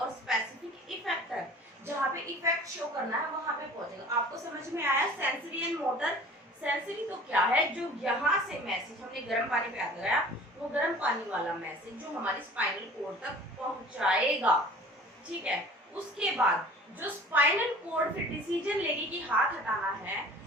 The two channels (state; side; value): normal; both; correlation 0.45